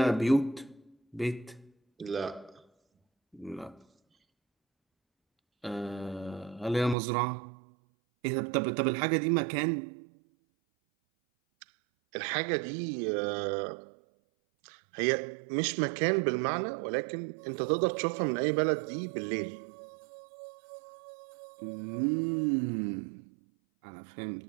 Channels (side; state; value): left; drops out; at 7.0 s